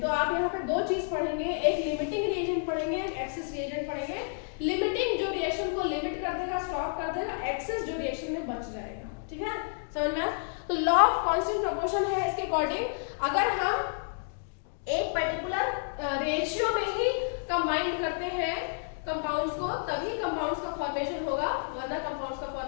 तो आप यहाँ पे 2 चीज पढ़ेंगे, एक लिमिटिंग रिएजेंट पढ़ेंगे, एक एक्सेस रिएजेंट पढ़ेंगे। लिमिटिंग जो रिएक्शन को लिमिट कर देगा, स्टॉप कर देगा, एक्सेस जो रिएक्शन में बच जाएगा। ठीक है, समझ में आया? तो लॉ ऑफ कांस्टेंट प्रोपोर्शन है इसके अकॉर्डिंग, अगर हम एक पर्टिकुलर रेशियो में ही कंबाइन करते हैं कंपाउंड्स को तभी कंपाउंड्स का फॉर्मेशन होगा, वरना कंपाउंड्स का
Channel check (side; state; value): right; silent; digital silence